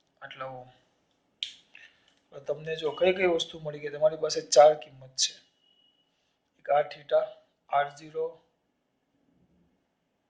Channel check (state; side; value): identical; both; correlation 1.00